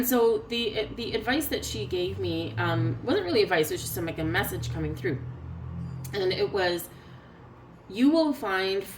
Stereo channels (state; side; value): identical; both; correlation 1.00